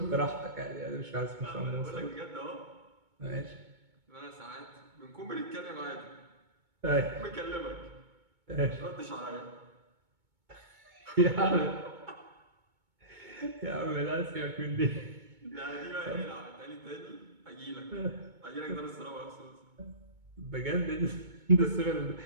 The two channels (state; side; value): late; left; 2.2 ms